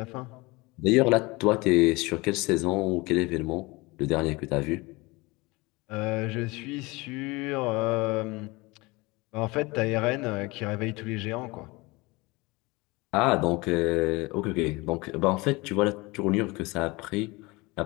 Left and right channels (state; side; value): quieter; right; 23.7 dB